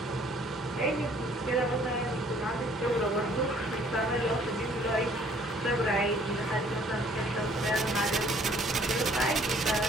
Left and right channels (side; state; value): both; normal; correlation 0.59